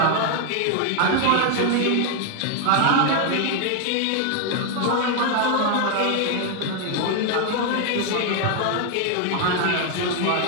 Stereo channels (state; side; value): different; both; correlation 0.01